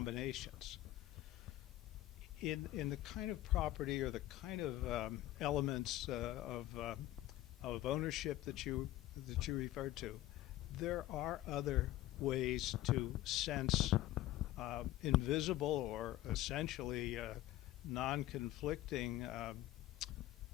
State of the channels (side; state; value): right; quieter; 15.1 dB